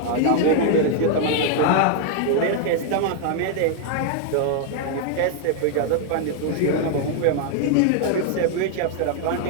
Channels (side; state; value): both; different; correlation 0.00